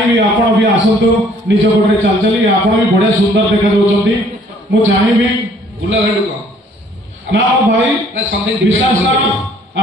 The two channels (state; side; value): normal; both; correlation 0.59